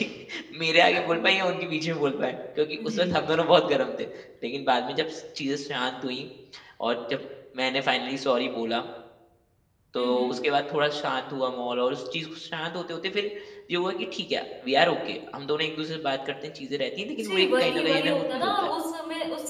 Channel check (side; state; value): both; identical; correlation 1.00